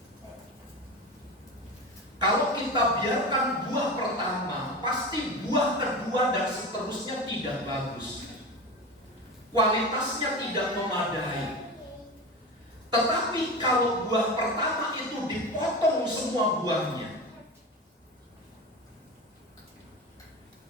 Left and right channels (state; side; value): normal; both; correlation 0.27